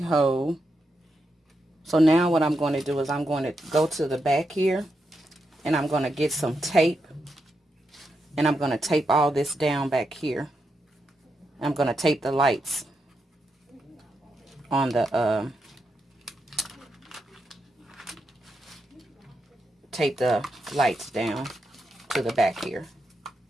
So now what I'm going to do is I'm going to go to the back here, and I'm going to get some tape, and I'm going to tape all this down back here. I'm going to tape the lights on the tape the lights down to the back here.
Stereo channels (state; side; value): normal; both; correlation 0.84